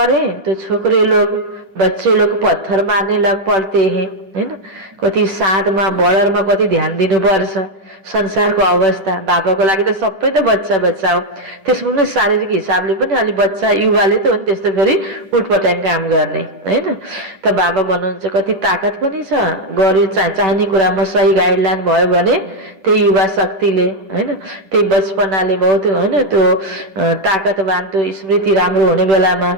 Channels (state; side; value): late; left; 10 ms